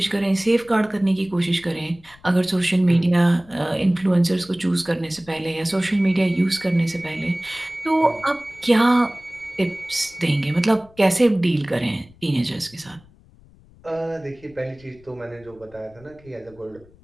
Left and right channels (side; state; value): left; noise; rumble, 26 dB below the sound